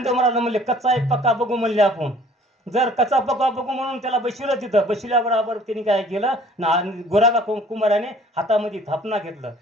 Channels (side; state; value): both; normal; correlation 0.53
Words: महाराज म्हणले कच्चा एक पक्का बघू म्हणले आपण जर कच्चा पक्का बघू म्हणून त्याला बसविलं तिथं बसविल्याबरोबर त्यांनी काय केलं ना गोरागा कुंभाराने हातामध्ये थापना घेतलं